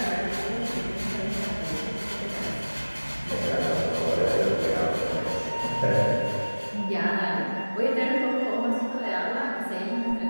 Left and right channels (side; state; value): both; inverted; correlation -1.00